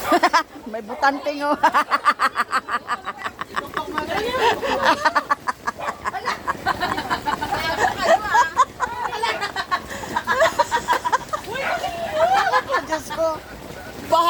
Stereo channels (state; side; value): identical; both; correlation 1.00